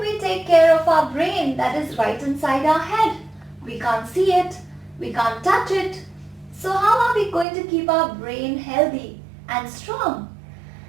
we take care of our brain that is right inside our head? We can't see it, we can't touch it. So how are we going to keep our brain healthy and strong?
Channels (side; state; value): left; drops out; at 7.5 s